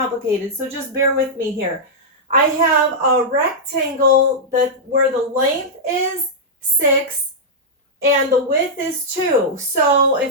so just bear with me here. I have a rectangle where the length is 6 and the width is 2. So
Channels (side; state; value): both; normal; correlation -0.08